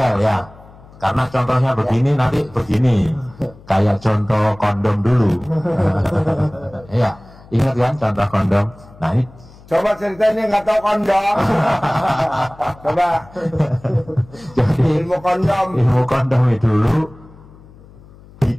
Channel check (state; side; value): noise; left; hum, 23 dB below the sound